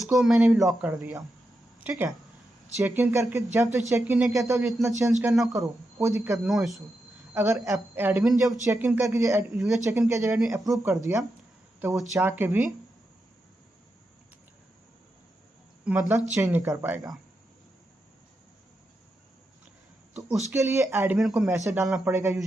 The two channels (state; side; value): normal; both; correlation 0.86